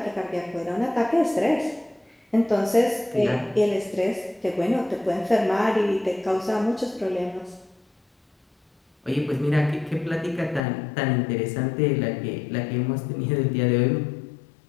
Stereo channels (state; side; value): drops out; right; at 10.6 s